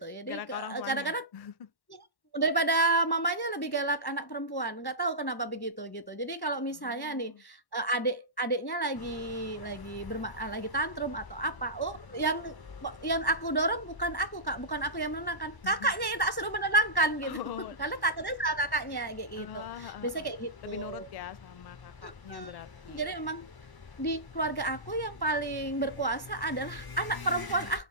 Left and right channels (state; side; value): late; right; 1.1 ms